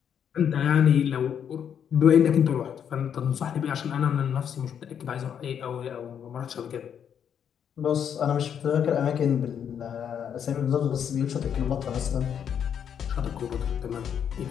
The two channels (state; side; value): quieter; right; 8.4 dB